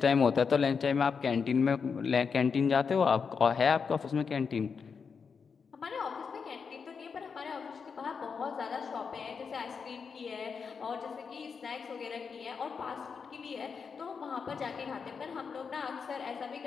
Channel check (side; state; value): right; quieter; 5.8 dB